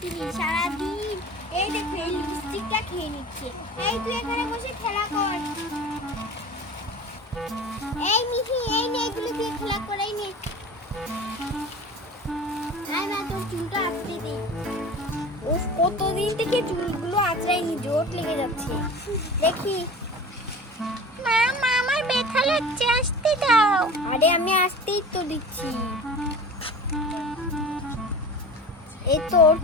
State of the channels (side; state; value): both; normal; correlation 0.37